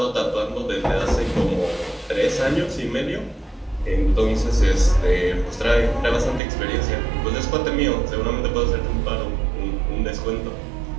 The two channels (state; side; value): drops out; left; at 6.4 s